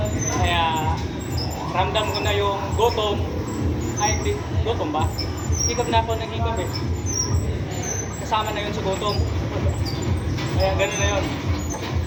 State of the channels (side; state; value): both; identical; correlation 1.00